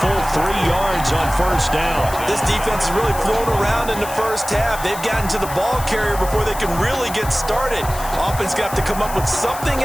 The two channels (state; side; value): noise; left; hiss, 12 dB below the sound